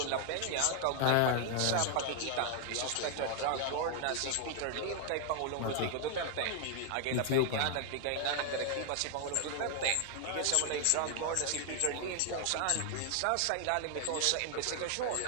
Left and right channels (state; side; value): different; both; correlation 0.00